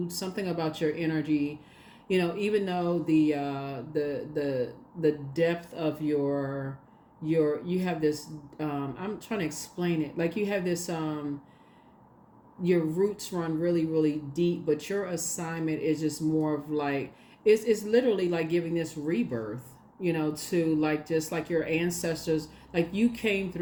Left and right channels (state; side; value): identical; both; correlation 1.00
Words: Something about your energy, even though the depth of you have this, I'm trying to explain it, like you have this, your roots run really really deep, but your assignment is just more of like, it's literally like giving this rebirth, to like just like your ancestors, like you came